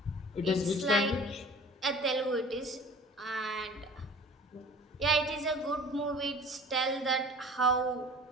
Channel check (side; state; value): both; normal; correlation 0.44